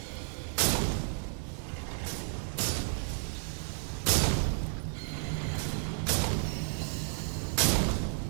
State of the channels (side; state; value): left; silent; 56 dB below the other